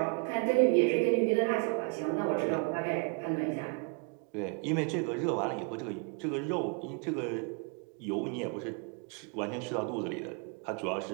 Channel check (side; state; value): left; quieter; 33.6 dB